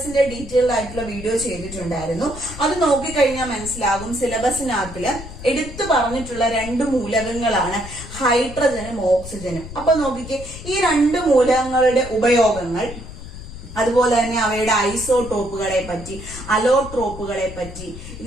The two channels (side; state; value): left; noise; rumble, 12 dB below the sound